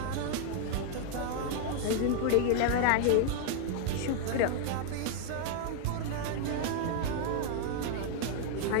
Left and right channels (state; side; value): different; both; correlation 0.00